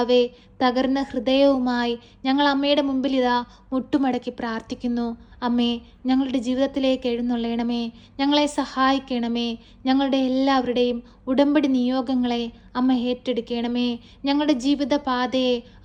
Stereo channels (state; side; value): identical; both; correlation 1.00